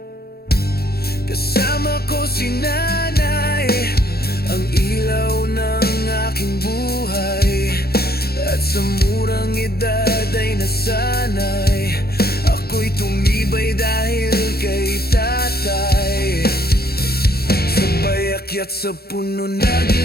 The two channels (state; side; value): late; right; 0.46 ms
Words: Kasama ko si nanay, ang ilaw ng aking buhay. At sa murang edad ay nasanay, ako'y tumibay dahil kay tatay. Sabay akyat sa puno,